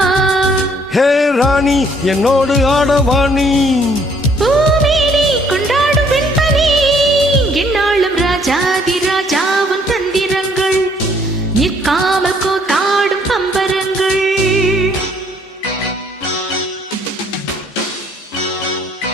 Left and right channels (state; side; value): normal; both; correlation 0.64